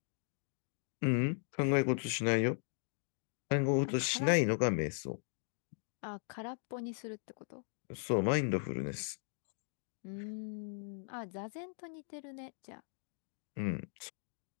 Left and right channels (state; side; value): silent; right; digital silence